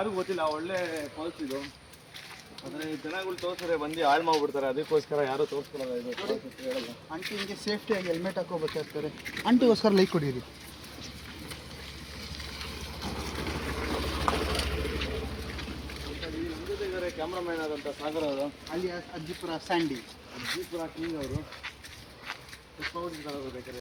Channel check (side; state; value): both; identical; correlation 1.00